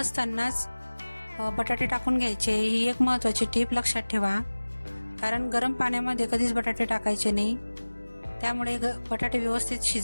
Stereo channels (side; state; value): both; inverted; correlation -1.00